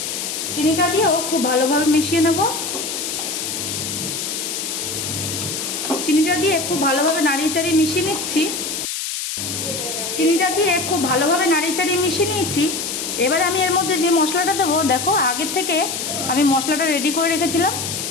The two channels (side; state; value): left; noise; hiss, 4 dB below the sound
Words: চিনিটা দিয়েও খুব ভালোভাবে মিশিয়ে নেব। চিনিটা দিয়ে খুব ভালোভাবে নাড়িয়ে চাড়িয়ে মিশিয়ে নিচ্ছি। চিনিটা দিয়ে খুব ভালোভাবে নাড়িয়ে চাড়িয়ে মিশিয়ে নিয়েছি। এবারে আমি এর মধ্যে যে মশলাটা দেবো, দেখো আগের থেকে আমি মশলাটা রেডি করে রেখেছিলাম,